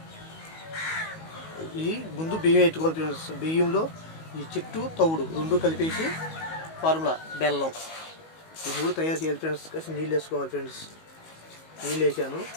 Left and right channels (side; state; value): right; late; 19 ms